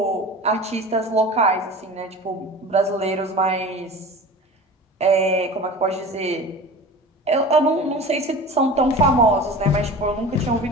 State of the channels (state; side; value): normal; both; correlation 0.36